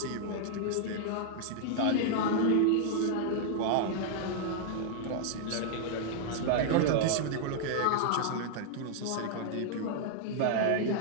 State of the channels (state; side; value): different; both; correlation -0.01